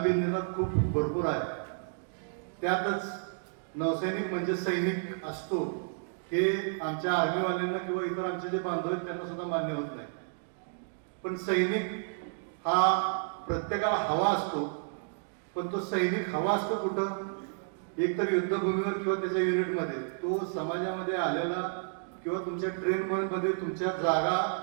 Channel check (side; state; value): left; silent; digital silence